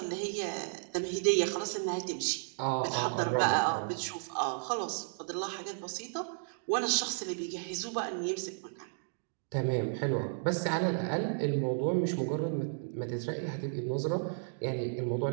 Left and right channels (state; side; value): silent; left; digital silence